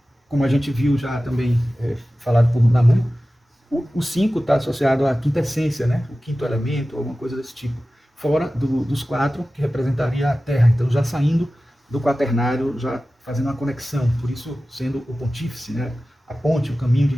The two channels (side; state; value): both; normal; correlation 0.95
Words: Como a gente viu já também falado por Namu, o 5 está associado à quinta essência, né, o quinto elemento, alguma coisa desse tipo. Fora dos 4, que representaria a Terra. Então, já saindo do quaternário, já fazendo uma conexão, por isso sendo o pontífice, né, a ponte, o caminho de